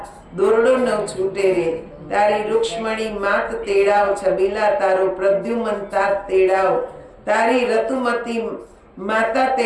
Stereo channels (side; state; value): both; identical; correlation 1.00